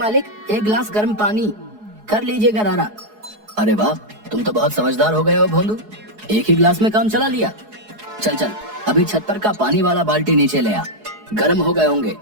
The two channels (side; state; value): left; late; 4.7 ms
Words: 1 गिलास गर्म पानी, कर लीजिए गरारा। अरे वाह, तुम तो बहुत समझदार हो गए हो भोंदू, एक ही गिलास में काम चला लिया। चल चल, अभी छत पर का पानी वाला बाल्टी नीचे ले आ। गर्म हो गए होंगे,